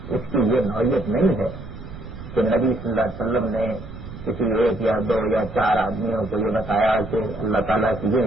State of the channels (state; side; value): noise; right; rumble, 13 dB below the sound